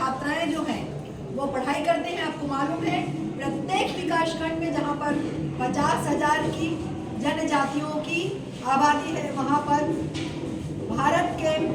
जो हैं वो पढ़ाई करते हैं। आपको मालूम है प्रत्येक विकास खंड में जहां पर 50,000 की जनजातियों की आबादी है, वहां पर भारत के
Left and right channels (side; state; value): both; identical; correlation 1.00